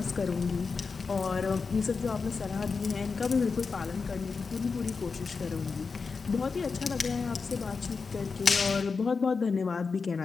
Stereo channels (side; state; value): right; quieter; 4.8 dB